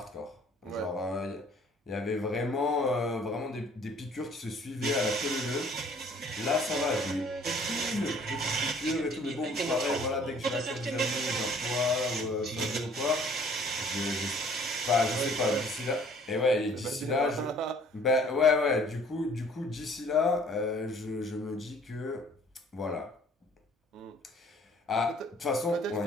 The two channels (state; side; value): normal; both; correlation 0.56